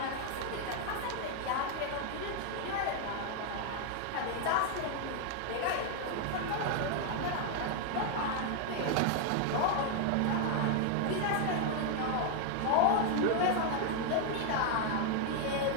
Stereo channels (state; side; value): different; both; correlation 0.00